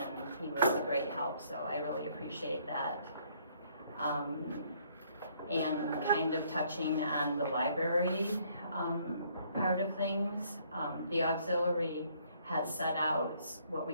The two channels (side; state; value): both; inverted; correlation -0.65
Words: he was a great help, so I really appreciate that. And kind of touching on the library part of things, the auxiliary has set out what we